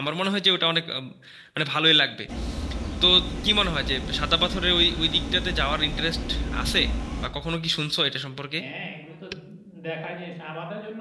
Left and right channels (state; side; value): identical; both; correlation 1.00